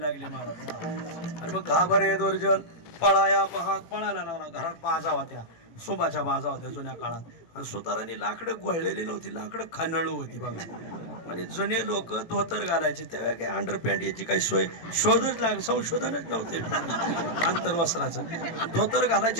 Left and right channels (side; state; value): right; late; 18 ms